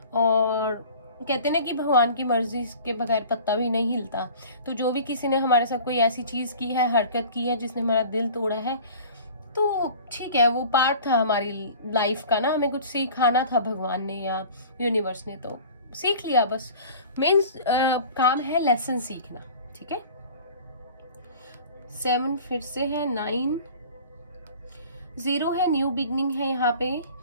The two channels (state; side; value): inverted; both; correlation -0.43